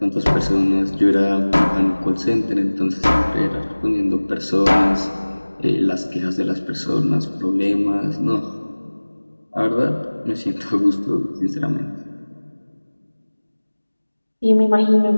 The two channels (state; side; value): inverted; both; correlation -1.00